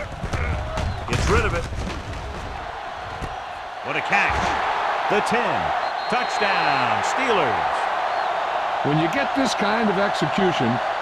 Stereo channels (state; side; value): identical; both; correlation 1.00